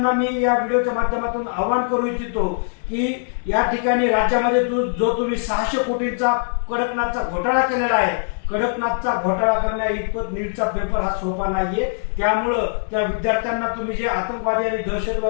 मी या व्हिडिओच्या माध्यमातून आवाहन करू इच्छितो की या ठिकाणी राज्यामध्ये जो तुम्ही 600 कोटींचा कडकनाथचा घोटाळा केलेला आहे, कडकनाथचा घोटाळा करण्या इतपत नीटचा पेपर हा सोपा नाहीये. त्यामुळं त्या विद्यार्थ्यांना तुम्ही जे आतंकवादी आणि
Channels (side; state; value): right; silent; 65 dB below the other